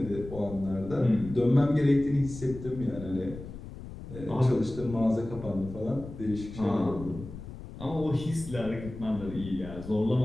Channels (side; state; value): left; noise; rumble, 12 dB below the sound